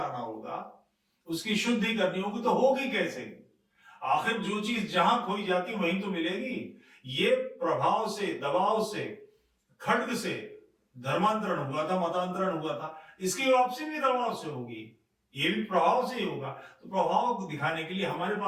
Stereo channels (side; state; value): both; identical; correlation 1.00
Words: होगा, उसकी शुद्धि करनी होगी। तो होगी कैसे? आखिर जो चीज जहां खोई जाती वहीं तो मिलेगी। ये प्रभाव से, दबाव से, खड्ग से धर्मांतरण हुआ था, मतांतरण हुआ था, इसकी वापसी भी दबाव से होगी, ये भी प्रभाव से ही होगा। तो प्रभाव को दिखाने के लिए हमारे